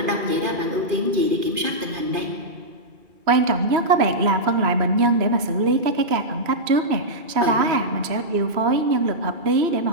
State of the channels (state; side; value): late; left; 2.3 ms